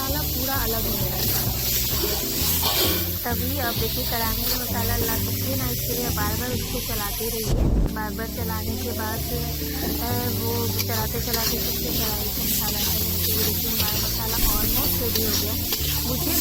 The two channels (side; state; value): both; identical; correlation 1.00